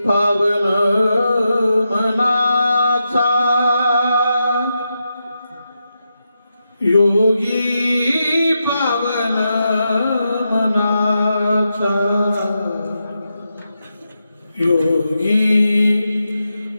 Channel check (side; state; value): both; inverted; correlation -0.87